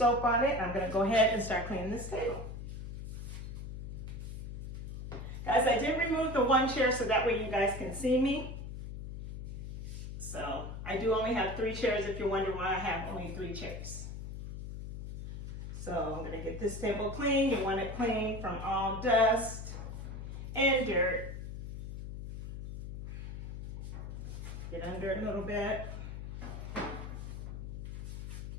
on it. I'm gonna go ahead and start cleaning this table. Guys, I did remove the one chair so that way you guys can see me. So I do only have 3 chairs if you're wondering why I have only 3 chairs. So I'm gonna get this table clean. You want it clean from all dust and dirt. Get under it a little bit.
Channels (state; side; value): noise; left; hum, 7 dB below the sound